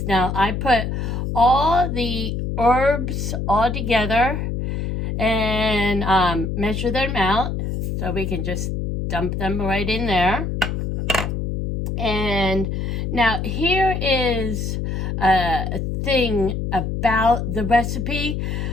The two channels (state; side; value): noise; left; hum, 2 dB below the sound